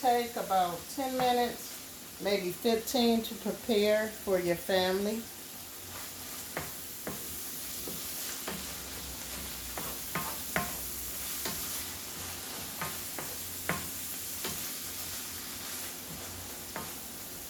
about 10 minutes, maybe 15 to prepare for your family.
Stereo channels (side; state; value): both; identical; correlation 1.00